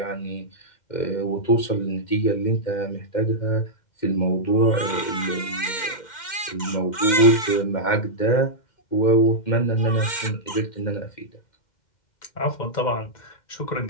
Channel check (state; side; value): late; right; 2.1 ms